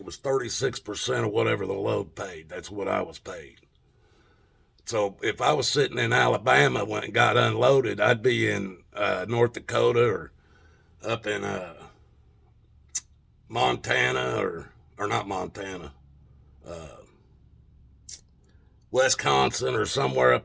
it was 36% of whatever the load paid. That's what I was paid. So if I was sitting in Alabama when it got unloaded, I'd be in North Dakota or up in Montana or not Montana, uh, Wisconsin or somewhere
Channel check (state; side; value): identical; both; correlation 1.00